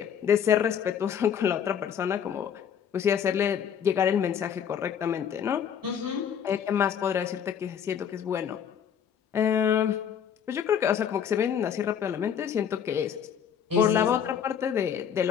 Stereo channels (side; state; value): right; quieter; 8.3 dB